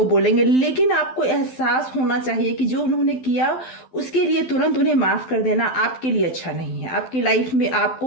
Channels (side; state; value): right; late; 12 ms